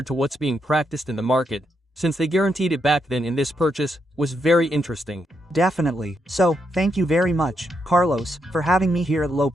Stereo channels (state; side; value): normal; both; correlation 0.80